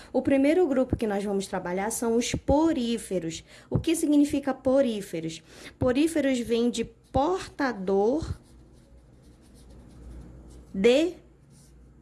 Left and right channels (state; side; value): identical; both; correlation 1.00